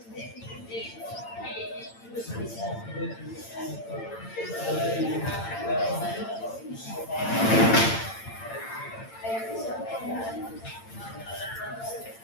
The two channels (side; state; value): right; late; 8.8 ms